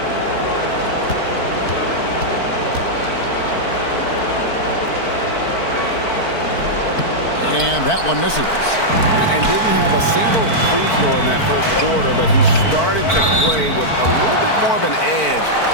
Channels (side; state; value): right; late; 4.5 ms